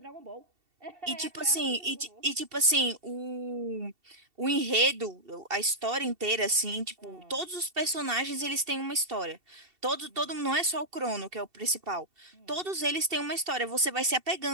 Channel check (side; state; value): left; late; 2.7 ms